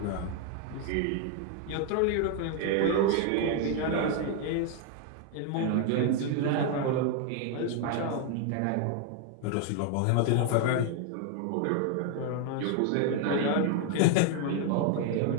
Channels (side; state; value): both; different; correlation 0.01